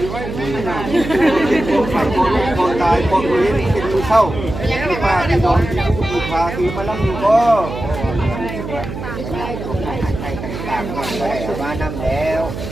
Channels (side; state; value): right; noise; hum, 8 dB below the sound